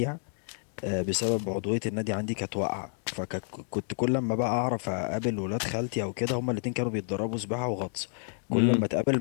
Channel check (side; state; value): right; silent; digital silence